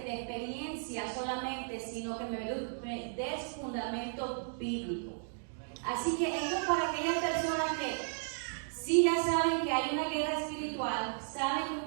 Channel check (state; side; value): silent; left; digital silence